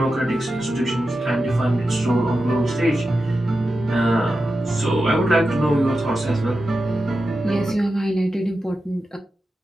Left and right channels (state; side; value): normal; both; correlation 0.91